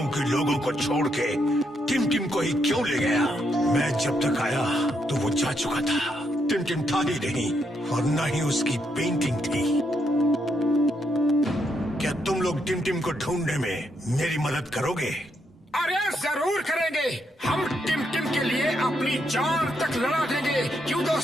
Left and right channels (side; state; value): both; normal; correlation 0.78